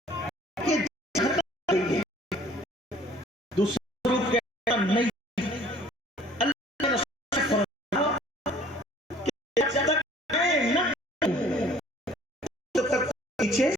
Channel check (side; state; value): both; normal; correlation 0.54